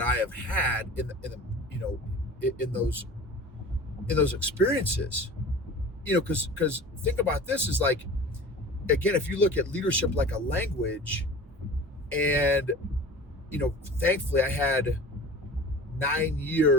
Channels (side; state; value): both; normal; correlation 0.39